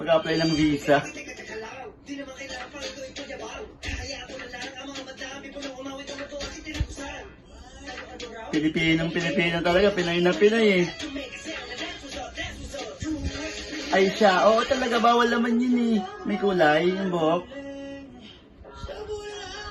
ng visa. Pilipino talaga, Pinoy na Pinoy eh. Ay siya, oo talaga, bawal naman yun eh. May kulay, yung buhok.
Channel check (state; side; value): identical; both; correlation 1.00